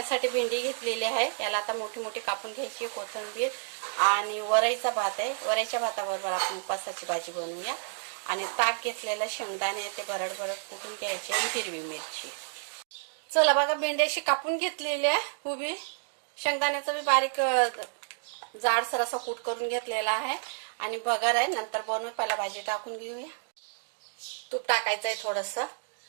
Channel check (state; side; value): silent; left; digital silence